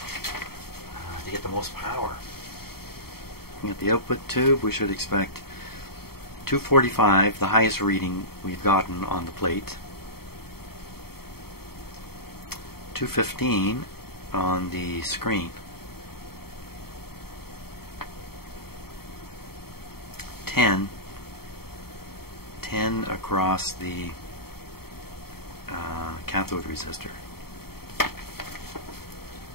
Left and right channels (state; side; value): late; right; 0.95 ms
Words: to get the most power. At the output tube we should expect 245, the highest reading we've gotten on the plate. 215 on the screen. 10 across the cathode resistor. Okay,